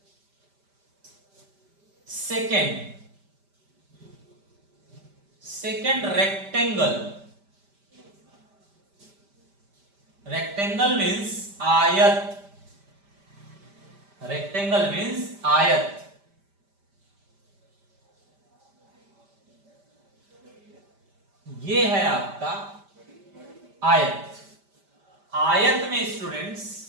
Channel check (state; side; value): late; left; 5.1 ms